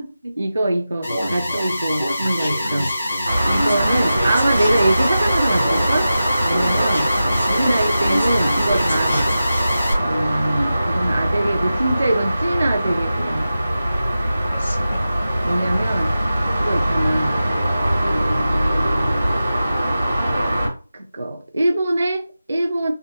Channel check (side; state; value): both; inverted; correlation -0.93